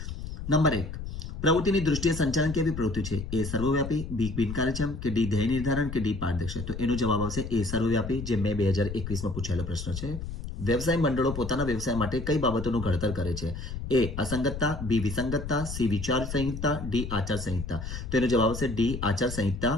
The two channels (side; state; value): left; noise; rumble, 7 dB below the sound